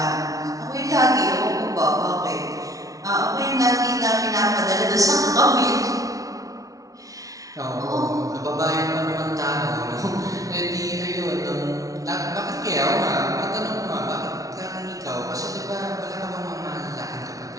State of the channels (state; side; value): late; left; 0.17 ms